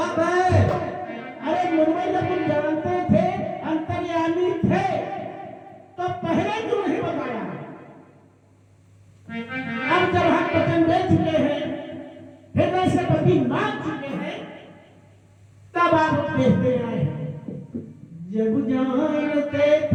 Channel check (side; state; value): both; identical; correlation 1.00